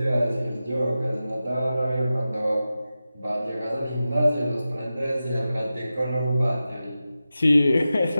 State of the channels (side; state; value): both; inverted; correlation -0.93